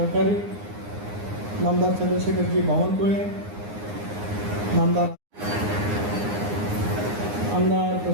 नामदार चंद्रशेखरजी बावनकुळे, आमदार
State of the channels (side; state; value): left; late; 9.7 ms